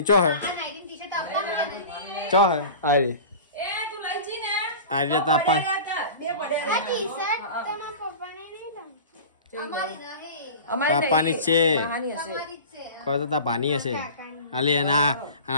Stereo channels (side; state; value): both; inverted; correlation -0.36